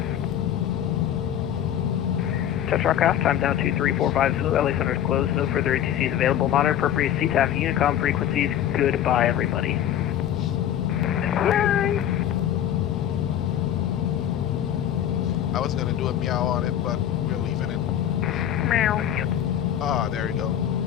Touch aircraft, time down 2345 Zulu, LA Center is closed, no further ATCs available, monitor appropriate CTAF Unicom frequencies, goodbye everybody. Bye! I was gonna do a meow on it, but we're leaving it. Meow. Ah, there you go.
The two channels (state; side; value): quieter; right; 10.7 dB